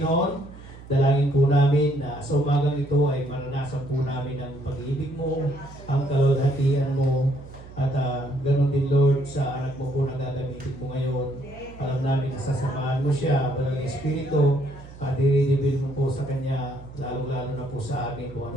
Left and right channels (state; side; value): noise; right; hum, 17 dB below the sound